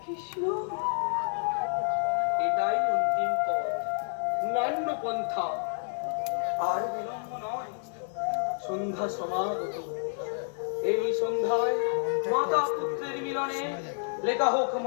কৃষ্ণ, এটাই অন্তিম পথ, নান্য পন্থা। আর বিলম্ব নয়, সন্ধ্যা সমাগত। এই সন্ধ্যায় মাতা পুত্রের মিলনে লেখা হোক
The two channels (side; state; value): right; silent; digital silence